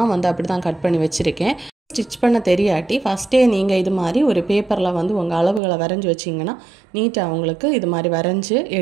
வந்து அப்படி தான் கட் பண்ணி வச்சுருக்கேன். ஸ்டிச் பண்ண தெரியாட்டி ஃபஸ்ட்டே நீங்கள் இது மாதிரி ஒரு பேப்பரில் வந்து உங்கள் அளவுகளை வரைஞ்சி வச்சிங்கன்னா நீட்டாக உங்களுக்கு இது மாதிரி வரைஞ்சி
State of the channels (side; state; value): left; drops out; at 5.6 s